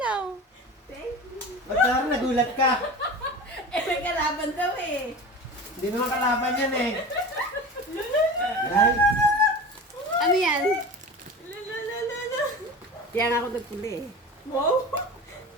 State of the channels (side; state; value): both; normal; correlation 0.33